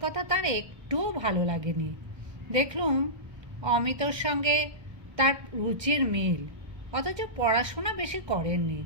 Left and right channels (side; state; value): left; late; 1.2 ms